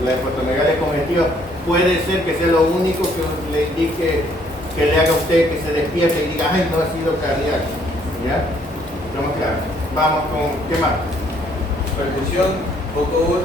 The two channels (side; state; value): both; normal; correlation 0.65